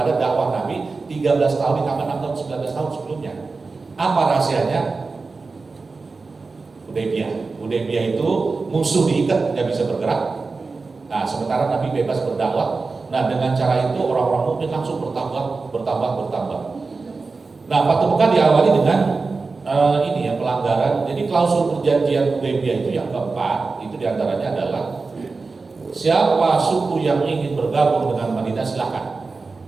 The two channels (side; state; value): left; quieter; 4.1 dB